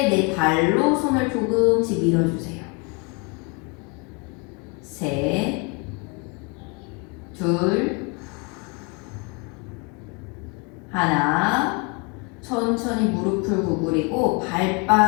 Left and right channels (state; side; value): quieter; right; 29.8 dB